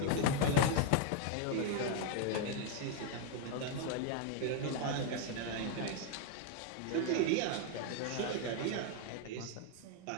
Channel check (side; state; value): both; different; correlation 0.00